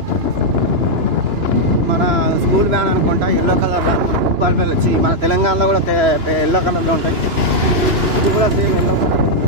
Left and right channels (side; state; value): left; late; 2.9 ms